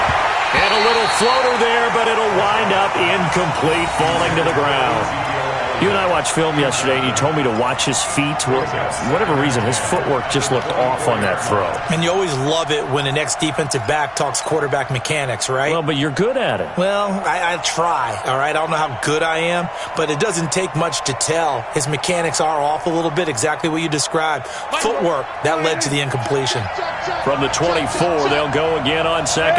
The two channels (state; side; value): identical; both; correlation 1.00